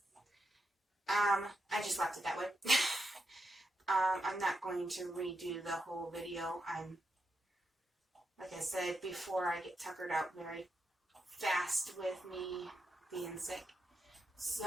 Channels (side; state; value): both; normal; correlation 0.85